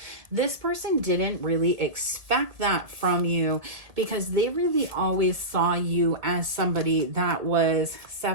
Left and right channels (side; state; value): left; late; 1.7 ms